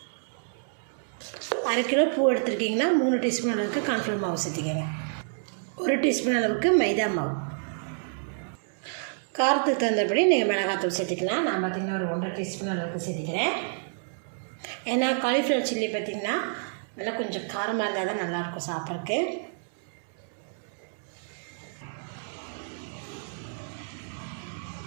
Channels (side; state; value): left; silent; digital silence